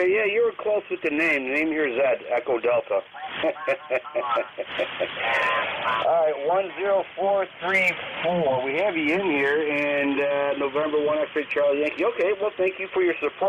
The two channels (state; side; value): identical; both; correlation 1.00